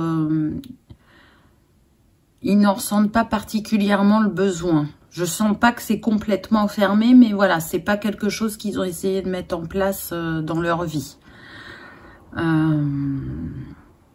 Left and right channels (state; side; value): identical; both; correlation 1.00